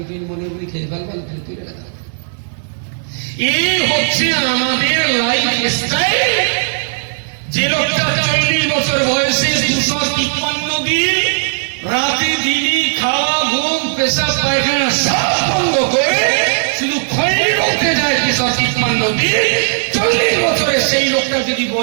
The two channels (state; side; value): silent; left; digital silence